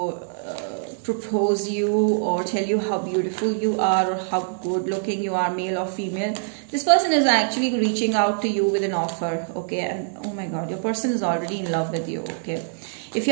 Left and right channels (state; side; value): silent; left; 63 dB below the other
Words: propose you or tell you how beautiful you are or how good looking you are, male or female. This person is actually reaching out to you with an offer, okay? And oh my god, your person is already in love with you, okay? If